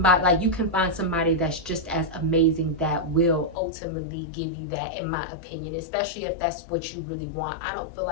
like you can find somebody that's just as amazing that will ultimately give you that, in my opinion, especially if that's what you really want. I don't feel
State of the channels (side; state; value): right; drops out; at 3.6 s